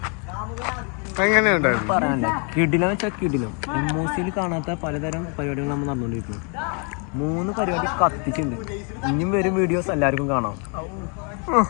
എങ്ങനെയുണ്ടായിരുന്നു? പറയാനുണ്ട്. കിടിലം വെച്ചാൽ കിടിലം. എമ്മോസിയിൽ കാണാത്ത പലതരം പരിപാടികൾ നമ്മൾ നടന്നുകൊണ്ടിരിക്കുന്നു. 3 പരിപാടി കത്തിച്ചുണ്ട്. ഇനിയും വരും വീഡിയോസ് എല്ലാവർക്കും കാണാം.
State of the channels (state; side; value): quieter; right; 37.3 dB